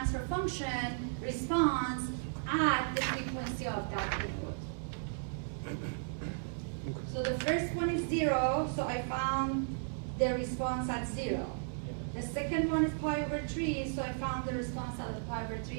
function response at the frequency of that input. So the first one is 0, so I found the response at 0. The second one is pi over 3, so I found the response at pi over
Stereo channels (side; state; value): left; silent; 54 dB below the other